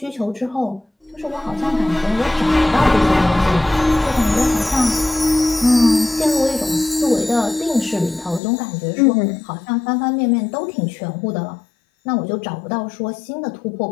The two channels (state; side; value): drops out; right; at 8.4 s